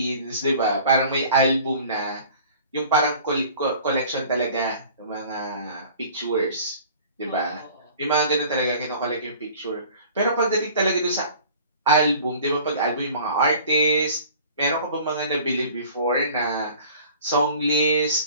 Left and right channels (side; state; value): both; inverted; correlation -0.47